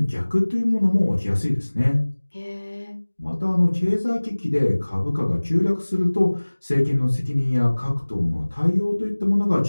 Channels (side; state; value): both; inverted; correlation -1.00